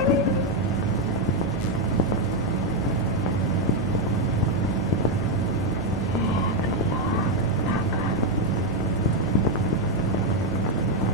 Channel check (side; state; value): both; normal; correlation 0.03